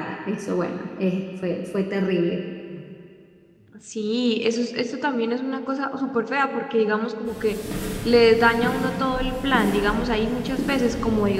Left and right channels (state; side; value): identical; both; correlation 1.00